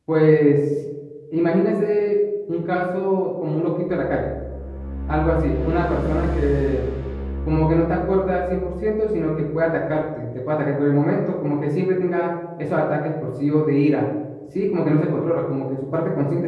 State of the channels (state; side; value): identical; both; correlation 1.00